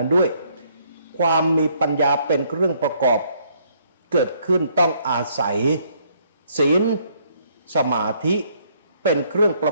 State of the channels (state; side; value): inverted; both; correlation -0.67